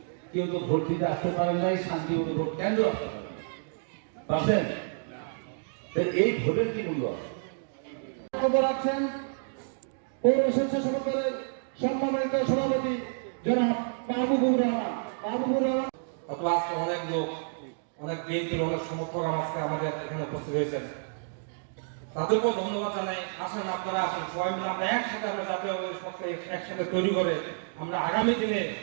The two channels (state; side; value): silent; left; digital silence